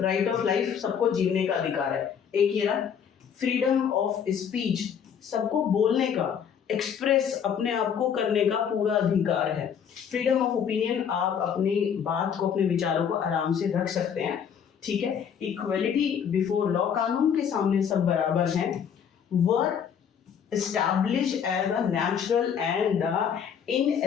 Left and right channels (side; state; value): right; quieter; 7.8 dB